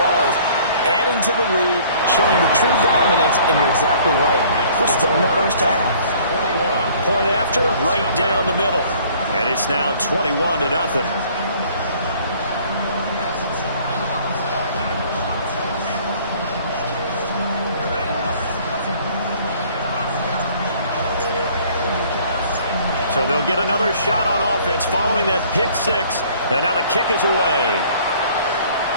Adding to the lead, showing the true dominance, and you're exactly right. We're still in the first half. Point after, right down the middle. And it's now 21-0. So they'll get another shot on offense following that pick 6. And now the kick is away.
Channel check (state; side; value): inverted; both; correlation -0.55